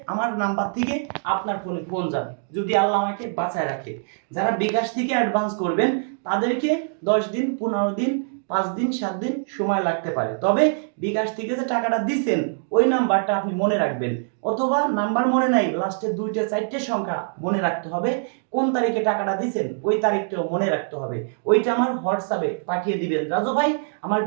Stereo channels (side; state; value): left; silent; digital silence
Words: আমার নাম্বার থেকে আপনার ফোনে ফোন যাবে, যদি আল্লাহ আমাকে বাঁচায় রাখে। যারা বিকাশ থেকে অ্যাডভান্স করবেন তাদেরকে 10 দিন 15 দিন 5 দিন 7 দিন সময় লাগতে পারে, তবে বিকাশ থেকে যে টাকাটা দিচ্ছেন ওই নাম্বারটা আপনি মনে রাখবেন, অথবা নাম্বার মনে নাই লাস্টে 2টা 4টে সংখ্যা মনে রাখতে হবে, কোন তারিখে টাকাটা দিচ্ছেন ওই তারিখটাও মনে রাখতে হবে। ওইটা আমার হোয়াটসঅ্যাপে পাঠিয়ে দিবেন, রাজু ভাই আমার